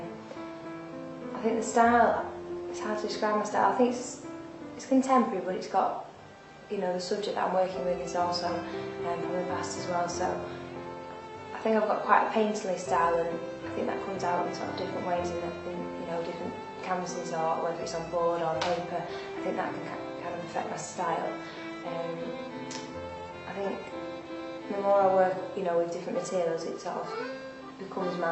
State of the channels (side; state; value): both; identical; correlation 1.00